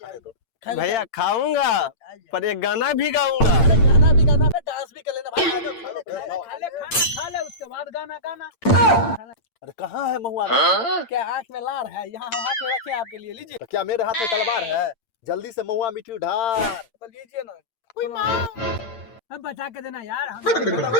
भैया खाऊंगा पर एक गाना भी गाऊंगा। अरे गाना भी गाना पे डांस भी कर लेना भाई। आ जाओ खा लो खा ले खाना खा ले उसके बाद गाना गाना। अरे कहाँ है महुआ? क्या आंख में लार है? यहाँ हम हाथ में रखे हैं आपके लिए, लीजिए। तो क्या मेरे हाथ में तलवार है? जल्दी से महुआ मिट्टी ढार। तो लीजिए ना। अब बचा के देना यार हम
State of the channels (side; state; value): right; late; 8.8 ms